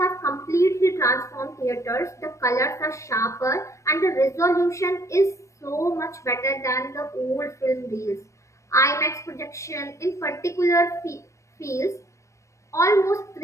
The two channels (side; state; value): right; late; 0.15 ms